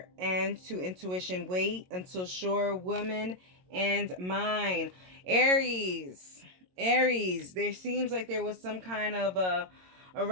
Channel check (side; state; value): left; late; 22 ms